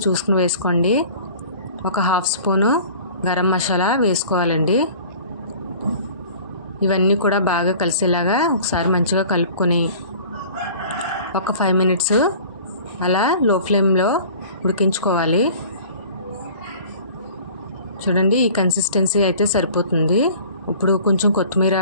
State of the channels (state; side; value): inverted; both; correlation -0.46